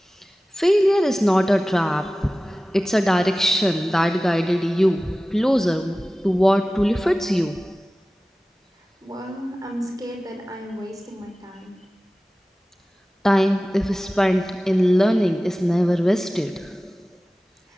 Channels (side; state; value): both; normal; correlation 0.97